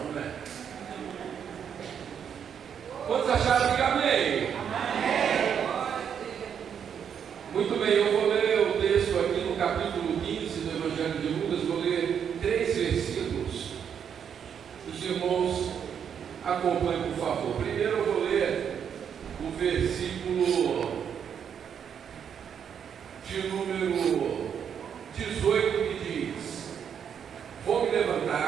né? Quantos acharam que amém? Amém. Muito bem, eu vou ler o texto aqui no capítulo 15 do Evangelho de Lucas. Vou ler 3 versículos. Os irmãos acompanhem, por favor. Primeiro eu vou ler o versículo de número 18, que diz: vou me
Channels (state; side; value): quieter; left; 7.9 dB